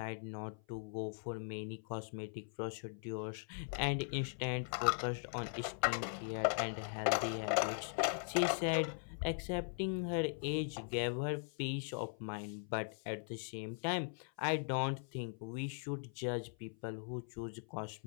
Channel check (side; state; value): right; silent; 51 dB below the other